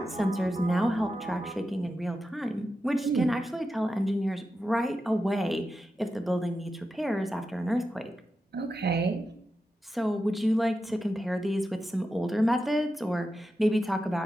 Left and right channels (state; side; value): normal; both; correlation 0.90